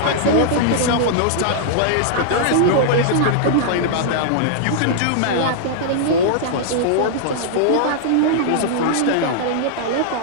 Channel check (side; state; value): both; different; correlation -0.01